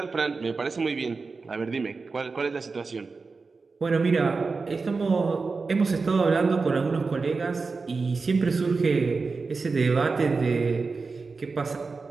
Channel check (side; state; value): left; quieter; 4.3 dB